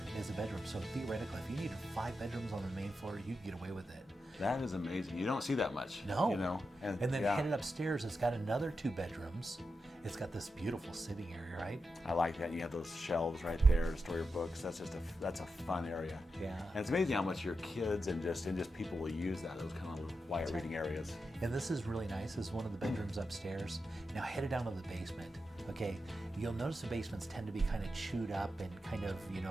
as a bedroom. So theoretically, if you needed 5 bedrooms on the main floor, you could get away with it. That is amazing. You don't see that much. No. You know? And then headed upstairs, it's got another 2 bedrooms. It's got this beautiful sitting area, right? I like that. You have those shelves right there to store your books. That's a fun area. Yeah. And it's amazing how much your kids and just people will use that, those kind of quiet reading areas. And this is really nice. This is one of the bedrooms upstairs. Now headed down to the basement. Okay, you'll notice the basements tend to be kind of chewed up and kind of,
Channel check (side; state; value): both; normal; correlation 0.88